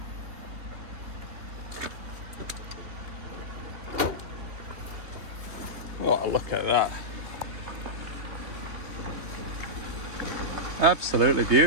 Oh, look at that. Absolutely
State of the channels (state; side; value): late; left; 3.3 ms